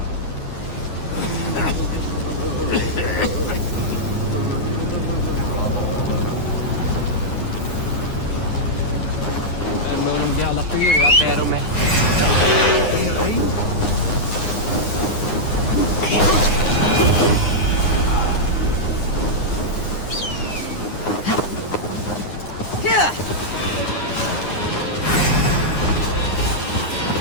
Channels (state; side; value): late; right; 9.7 ms